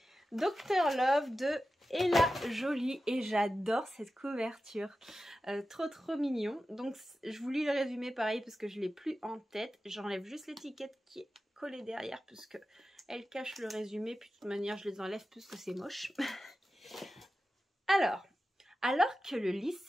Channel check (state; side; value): normal; both; correlation 0.93